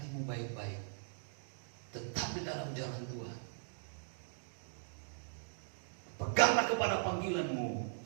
baik-baik, tetap di dalam jalan Tuhan, peganglah kepada panggilanmu,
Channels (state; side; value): silent; left; digital silence